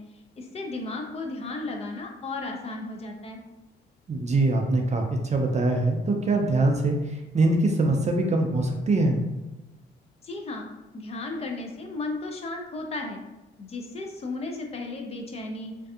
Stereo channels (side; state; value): both; normal; correlation 0.69